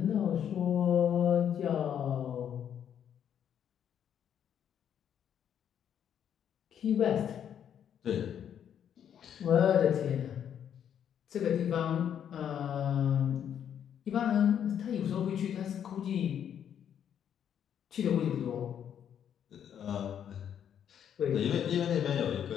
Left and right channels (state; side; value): quieter; right; 9.1 dB